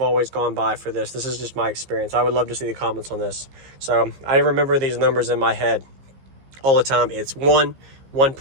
always gone by for this. This is just my experience. I would love to see the comments on this. So I remember these numbers in my head all the time. It's 1,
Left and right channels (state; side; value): late; left; 15 ms